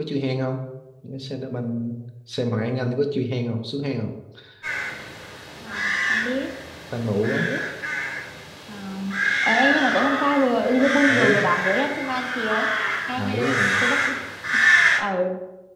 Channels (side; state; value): both; identical; correlation 1.00